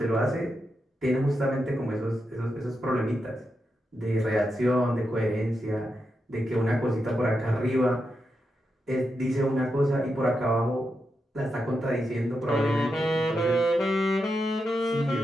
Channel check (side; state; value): both; normal; correlation 0.86